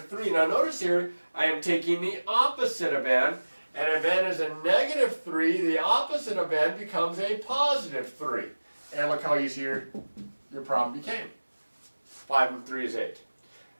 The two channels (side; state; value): both; inverted; correlation -1.00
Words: Now notice here, I am taking the opposite of n, and if n is a -3, the opposite of n becomes a +3. And look how easy your problem became. 5 and 3 is 8.